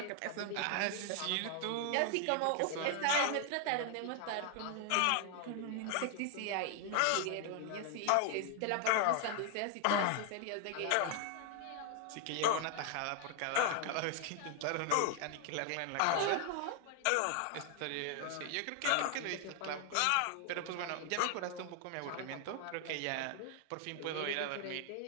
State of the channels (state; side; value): different; both; correlation 0.00